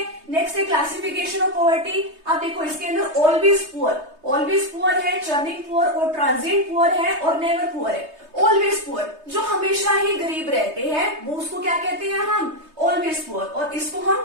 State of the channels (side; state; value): left; late; 3.2 ms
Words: नेक्स्ट है क्लासिफिकेशन ऑफ पॉवर्टी। आप देखो इसके अंदर ऑलवेज पुअर है, चर्निंग पुअर और ट्रांजिएंट पुअर है और नेवर पुअर है। ऑलवेज पुअर जो हमेशा ही गरीब रहते हैं वो उसको क्या कहते हैं? हम ऑलवेज पुअर। और इसको हम